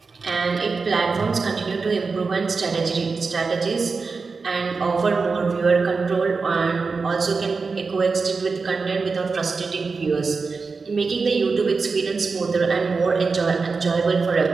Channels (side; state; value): left; quieter; 4.5 dB